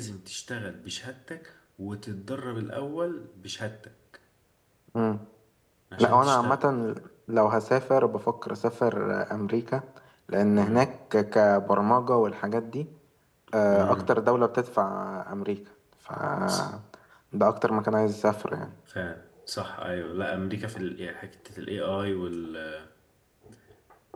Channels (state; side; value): identical; both; correlation 1.00